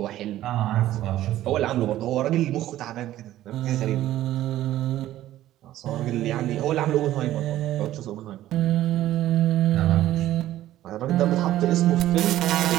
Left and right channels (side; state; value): left; quieter; 13.9 dB